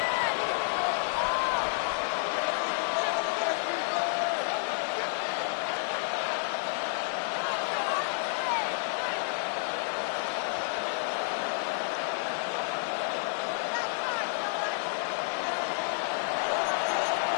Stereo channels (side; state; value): right; silent; digital silence